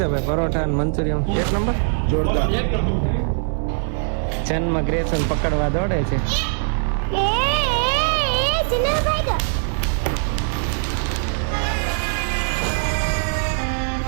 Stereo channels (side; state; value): left; silent; 56 dB below the other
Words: ભાઈ? પરોઠા અને મંચુરિયન એક નંબર જોરદાર. ચેનમાં ગ્રેસન પકડવા દોડે છે.